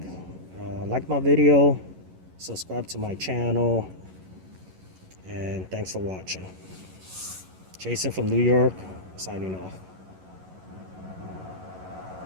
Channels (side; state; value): left; late; 11 ms